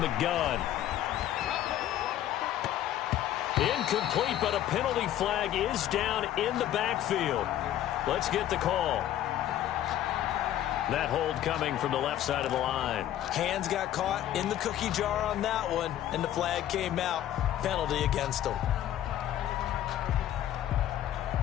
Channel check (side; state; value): right; quieter; 12.2 dB